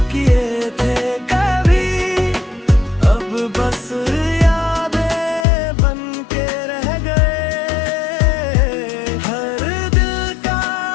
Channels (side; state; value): right; drops out; at 5.5 s